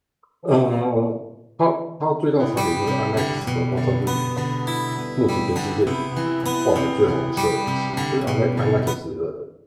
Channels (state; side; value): identical; both; correlation 1.00